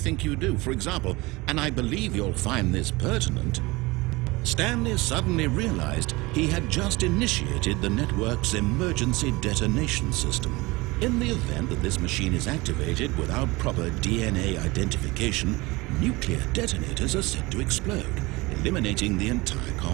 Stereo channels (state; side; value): quieter; left; 22.7 dB